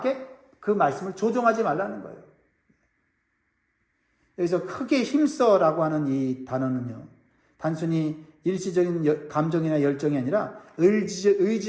그 말씀을 조종하지 말라는 거예요. 여기서 크게 힘써라고 하는 이 단어는요, 단순히 일시적인 감정이나 열정이 아니라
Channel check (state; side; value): identical; both; correlation 1.00